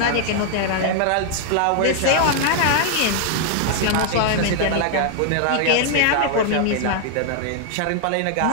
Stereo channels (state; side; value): different; both; correlation 0.00